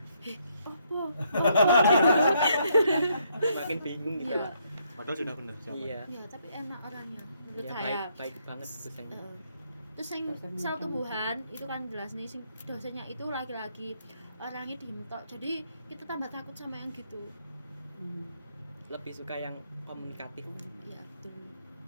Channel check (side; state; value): both; inverted; correlation -0.72